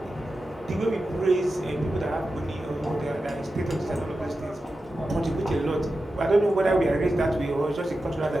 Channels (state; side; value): normal; both; correlation 0.91